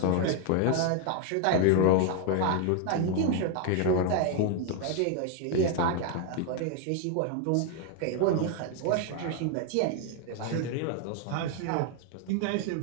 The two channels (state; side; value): different; both; correlation 0.00